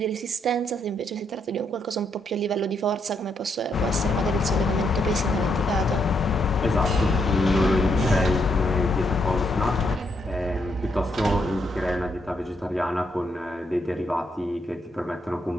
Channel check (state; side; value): normal; both; correlation 0.76